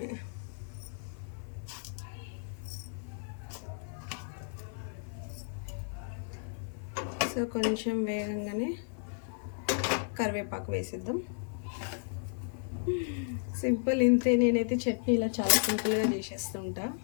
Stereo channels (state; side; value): silent; right; 55 dB below the other